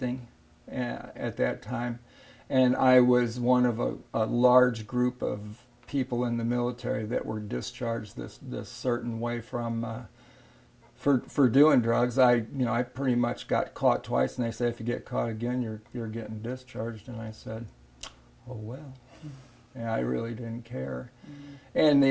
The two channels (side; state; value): both; identical; correlation 1.00